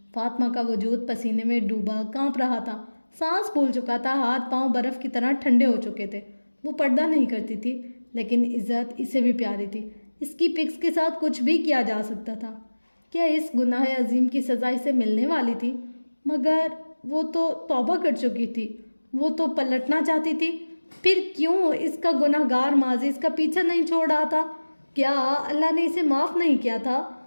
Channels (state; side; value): inverted; both; correlation -1.00